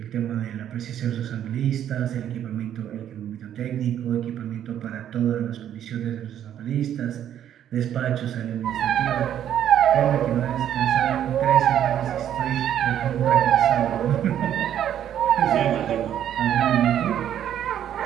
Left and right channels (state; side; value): quieter; left; 10.4 dB